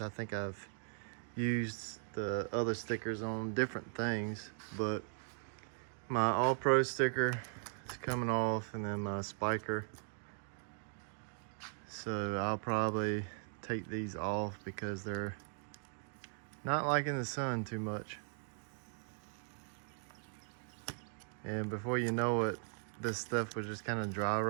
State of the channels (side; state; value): left; silent; 52 dB below the other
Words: I think I've used the other stickers on different things, but my All Pro sticker is coming off, and then my spiker. So I'll probably take these off because they're not liking the sun too much. And before you know it, this stuff would just kind of dry